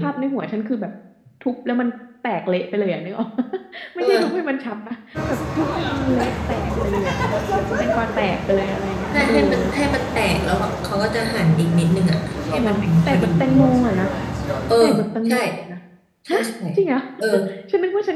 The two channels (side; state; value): both; identical; correlation 1.00